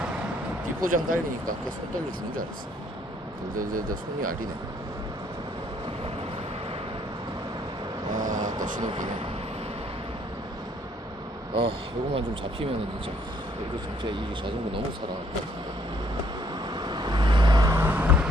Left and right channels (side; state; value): both; normal; correlation 0.65